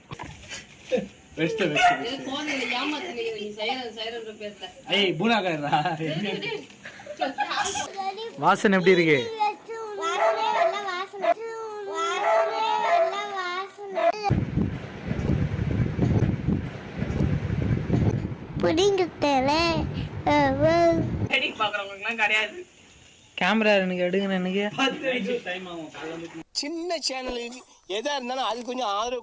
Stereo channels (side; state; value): both; identical; correlation 1.00